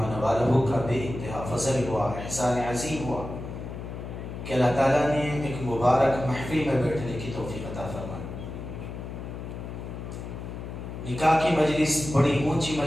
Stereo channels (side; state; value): left; noise; hum, 8 dB below the sound